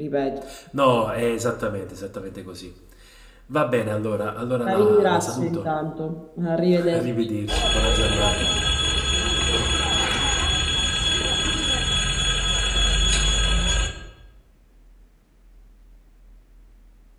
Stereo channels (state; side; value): identical; both; correlation 1.00